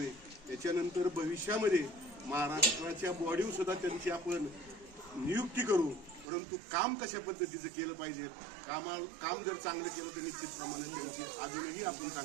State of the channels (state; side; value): drops out; left; at 6.2 s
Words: त्याच्यानंतर भविष्यामध्ये महाराष्ट्राच्या बॉडीवर सुद्धा त्यांची आपण नियुक्ती करू, परंतु काम कशा पद्धतीचं केलं पाहिजे, काम जर चांगलं केलं तर निश्चितप्रमाणे त्यांची अजूनही आपण